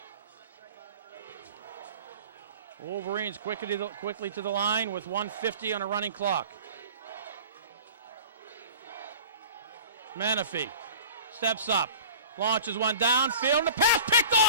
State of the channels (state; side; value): inverted; both; correlation -0.41